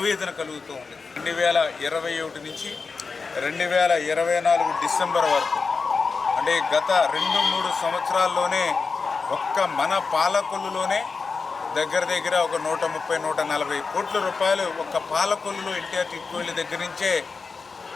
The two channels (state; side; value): quieter; right; 4.7 dB